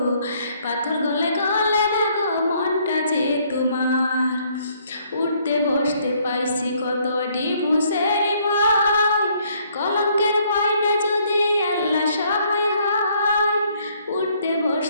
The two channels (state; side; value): inverted; both; correlation -0.66